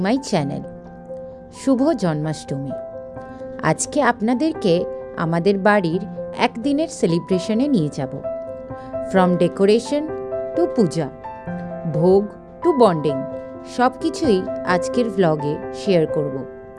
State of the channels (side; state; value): both; identical; correlation 1.00